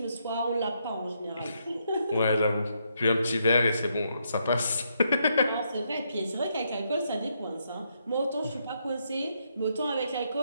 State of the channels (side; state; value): both; inverted; correlation -0.77